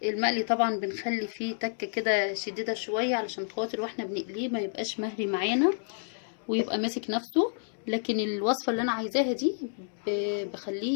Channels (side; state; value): right; silent; 58 dB below the other